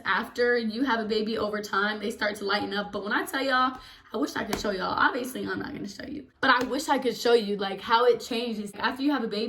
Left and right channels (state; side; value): identical; both; correlation 1.00